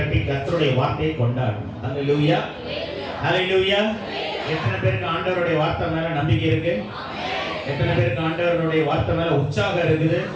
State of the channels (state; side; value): identical; both; correlation 1.00